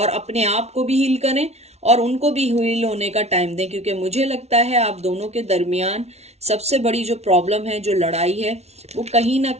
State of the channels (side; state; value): left; late; 0.31 ms